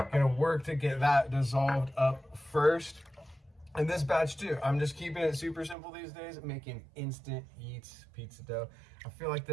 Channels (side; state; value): left; drops out; at 5.8 s